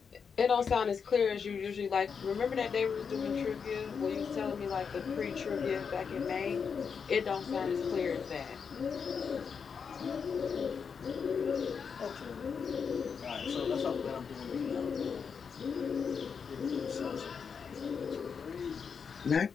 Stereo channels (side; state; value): right; quieter; 6.2 dB